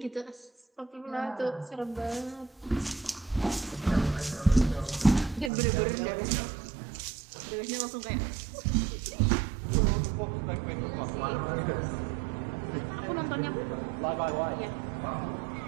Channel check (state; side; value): drops out; left; at 5.5 s